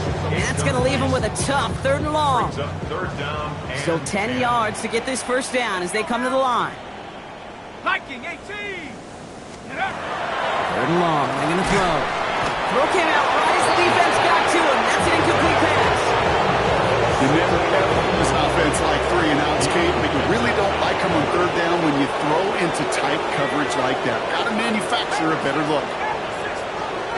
And that's going to leave him with a tough 3rd and long. Still 10 yards to get this 1st down as they come to the line. Viking 18. 3rd and long. They're going to throw. Throw came out right as the defense got to him. That's an incomplete pass. You never ever use offense like 3 and outs, Kate, but you really don't like them on third down when you throw into tight coverage like that. Got to manufacture a better look.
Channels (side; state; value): both; identical; correlation 1.00